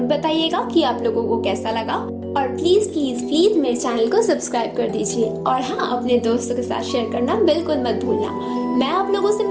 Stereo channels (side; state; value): both; identical; correlation 1.00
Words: बताइएगा कि आप लोगों को कैसा लगा और प्लीज प्लीज प्लीज मेरे चैनल को सब्सक्राइब कर दीजिए और हाँ, अपने दोस्तों के साथ शेयर करना बिल्कुल मत भूलना। मैं आप लोगों से